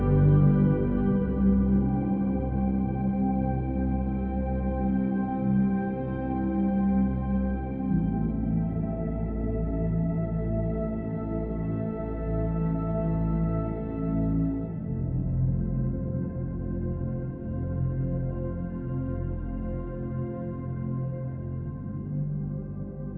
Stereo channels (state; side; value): identical; both; correlation 1.00